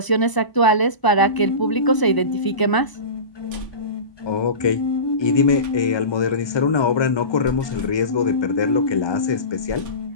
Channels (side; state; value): right; late; 1.0 ms